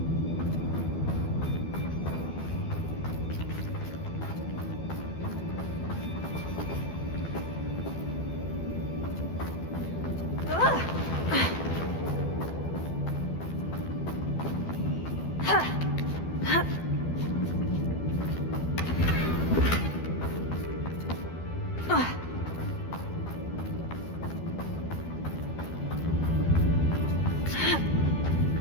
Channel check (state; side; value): late; right; 12 ms